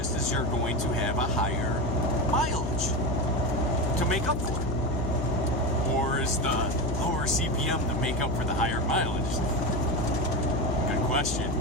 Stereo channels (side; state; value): left; noise; hum, 2 dB below the sound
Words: is you're going to have a higher mileage to make up for it. Or is the lower CPM to make up for the higher mileage? Good question.